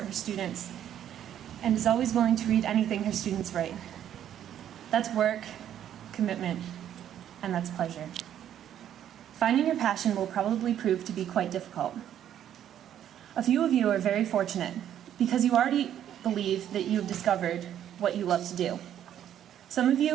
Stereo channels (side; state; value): left; quieter; 10.5 dB